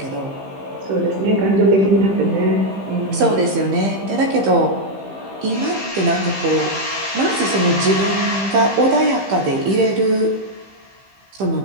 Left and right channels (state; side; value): late; left; 15 ms